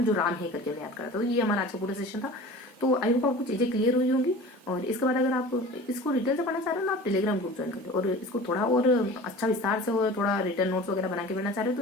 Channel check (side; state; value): both; normal; correlation 0.39